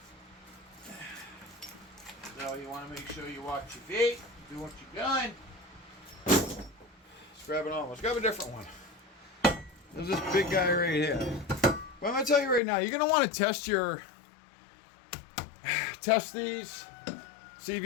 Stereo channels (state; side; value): drops out; right; at 12.6 s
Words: So you want to make sure you watch your feet, do what you're doing. Let's grab it on. Let's grab a different one. There's this big guy right here. But I'm going to tell you right now, you're going to want to test these. See if